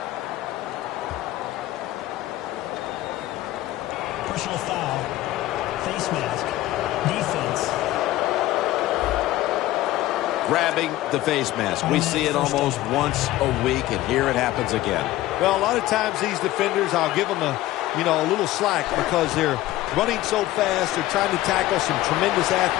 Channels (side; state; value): right; quieter; 15.8 dB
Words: Personal foul. Face mask. Defense. grabbing the face mask. We see it almost once a week, and here it happens again. Well, a lot of times these defenders, I'll give them a little slack because they're running so fast. They're trying to tackle some tremendous